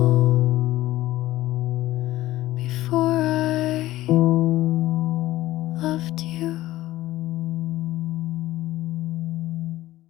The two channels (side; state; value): right; quieter; 16.0 dB